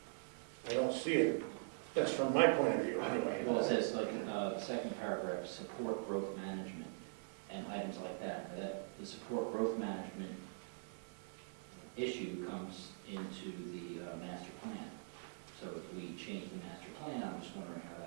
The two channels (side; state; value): left; silent; digital silence